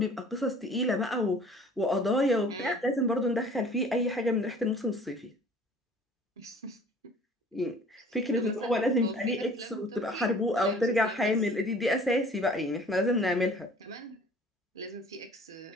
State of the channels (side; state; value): both; normal; correlation 0.50